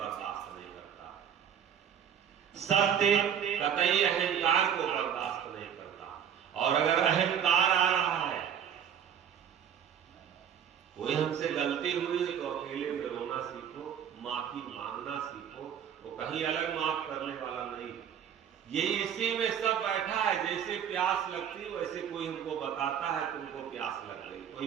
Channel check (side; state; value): left; quieter; 8.7 dB